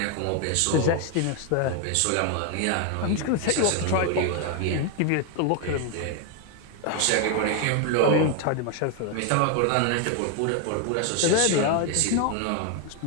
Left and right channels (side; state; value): both; different; correlation 0.01